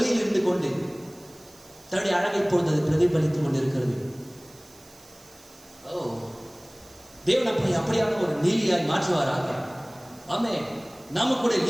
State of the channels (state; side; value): noise; right; hiss, 24 dB below the sound